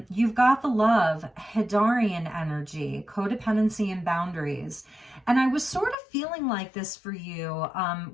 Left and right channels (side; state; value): right; drops out; at 6.0 s